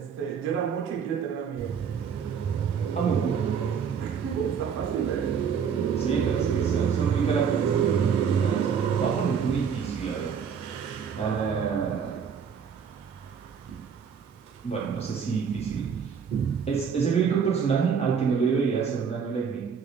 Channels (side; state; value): left; quieter; 6.9 dB